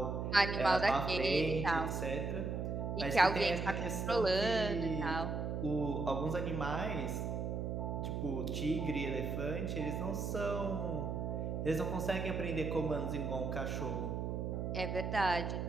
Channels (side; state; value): right; noise; hum, 2 dB below the sound